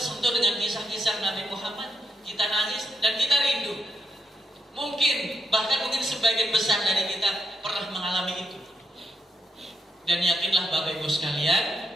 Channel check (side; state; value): both; normal; correlation 0.82